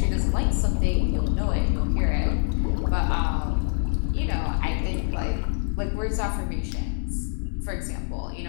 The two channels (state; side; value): silent; right; 62 dB below the other